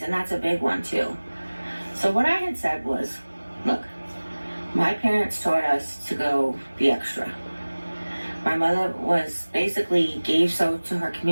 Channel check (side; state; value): both; inverted; correlation -1.00